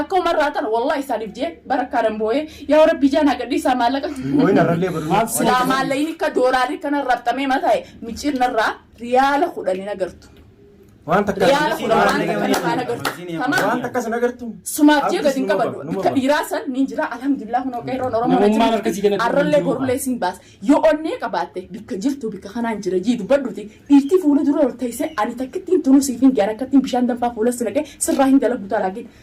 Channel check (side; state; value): both; identical; correlation 1.00